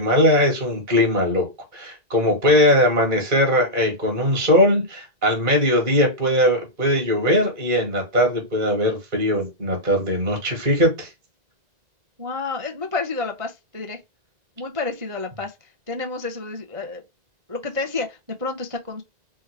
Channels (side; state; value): left; late; 1.9 ms